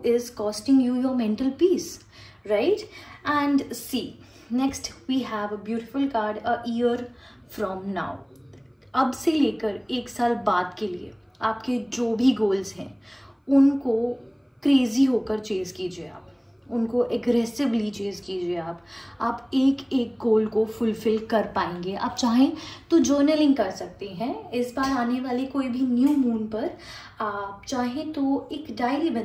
is costing you your mental peace, right? And see, next we have a beautiful card, a year from now. अब से लेकर 1 साल बाद के लिए आपके जो भी गोल्स हैं उनको क्रेजी होकर चेज कीजिए, आप उनको एग्रेसिवली चेज कीजिए। आप एक एक गोल को फुलफिल कर पाएंगे। आप चाहें तो जर्नलिंग कर सकते हैं इस बार आने वाले कोई भी न्यू मून पर। आप चाहें तो एक डायरी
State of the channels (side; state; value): both; identical; correlation 1.00